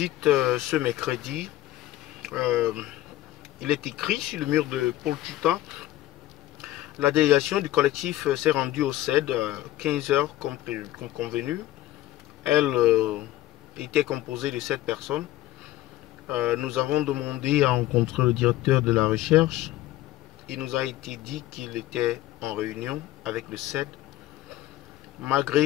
ce mercredi. Il est écrit sur le mur de Paul Tuta. La délégation du collectif s'est rendue au CED à 15 h comme convenu. Elle était composée de 7 personnes. Nous avons demandé à rencontrer le directeur de la recherche. Il nous a été dit qu'il était en réunion avec le CED.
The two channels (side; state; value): right; quieter; 15.1 dB